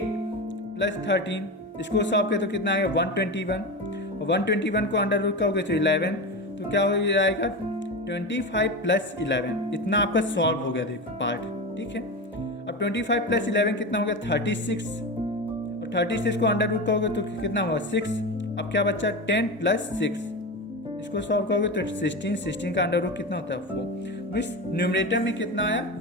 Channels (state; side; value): normal; both; correlation 0.22